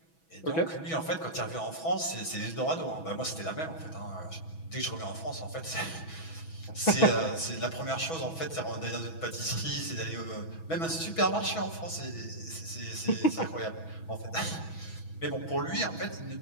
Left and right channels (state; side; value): late; right; 6.1 ms